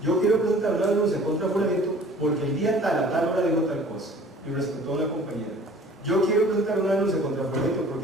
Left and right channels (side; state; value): both; normal; correlation 0.49